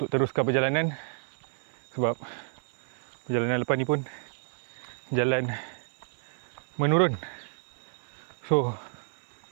teruskan perjalanan. Sebab perjalanan lepas ni pun jalan menurun. So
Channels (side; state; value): left; silent; 58 dB below the other